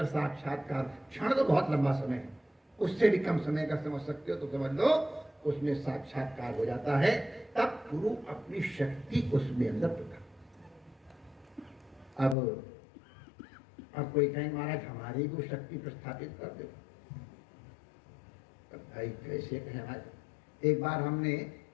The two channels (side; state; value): right; drops out; at 12.4 s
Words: साक्षात्कार, क्षण तो बहुत लंबा समय है, उससे भी कम समय का समझ सकते हो तो समझ लो, उसमें साक्षात्कार हो जाता है। तब गुरु अपनी शक्ति उसमें अंदर प्रकट। अब कोई कहे महाराज हमारी को शक्ति प्रस्थापित कर दो, भाई कैसे कहें महाराज। एक बार हमने